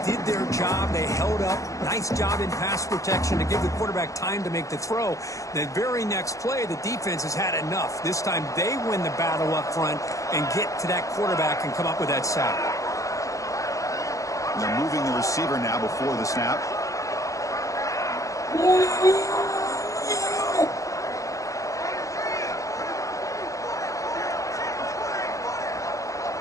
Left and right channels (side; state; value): right; late; 0.16 ms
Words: did their job. They held up. Nice job in pass protection to give the quarterback time to make the throw. The very next play, the defense has had enough. This time they win the battle up front and get to that quarterback and come up with that sack. They're moving the receiver now before the snap.